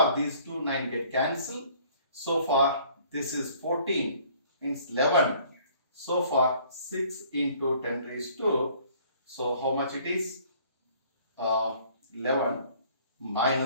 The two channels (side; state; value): both; inverted; correlation -0.56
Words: these two 9 get cancelled. So far this is 14, means 11. So far 6 into 10 raised to, so how much it is? 11